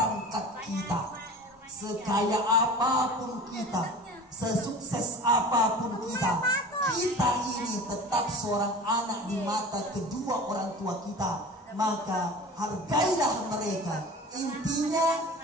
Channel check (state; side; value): normal; both; correlation 0.38